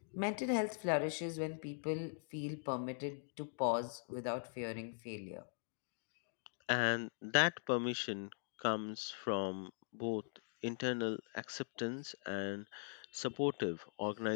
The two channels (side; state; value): right; silent; digital silence